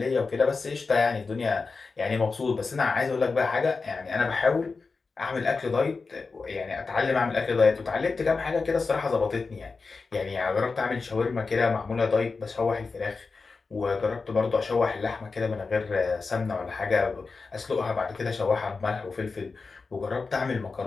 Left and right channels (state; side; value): quieter; right; 4.3 dB